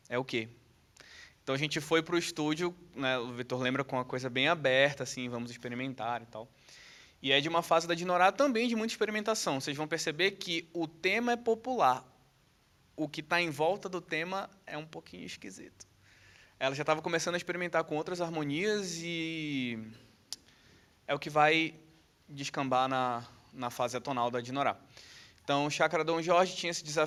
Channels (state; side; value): identical; both; correlation 1.00